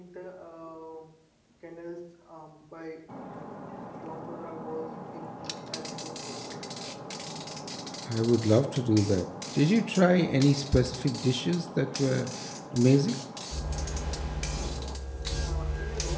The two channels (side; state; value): both; identical; correlation 1.00